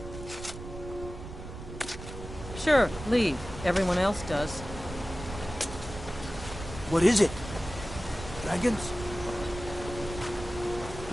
Sure, leave. Everyone else does. What is it? Dragons?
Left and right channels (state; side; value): noise; right; rumble, 11 dB below the sound